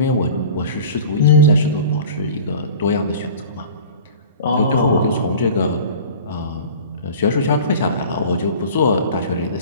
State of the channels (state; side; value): inverted; both; correlation -0.41